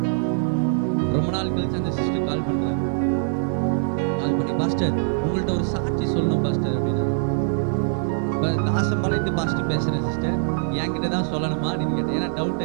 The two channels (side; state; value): left; silent; digital silence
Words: ரொம்ப நாள் கழிச்சு அந்த சிஸ்டர் கால் பண்றாங்க. கால் பண்ணி, பாஸ்டர் உங்கள்ட்ட ஒரு சாட்சி சொல்லணும் பாஸ்டர் அப்படின்னா. தாசம்பாளையத்து பாஸ்டர் பேசுறேன் சிஸ்டர், என்கிட்ட தான் சொல்லணுமா அப்படின்னு கேட்டேன். ஏன்னா டவுட்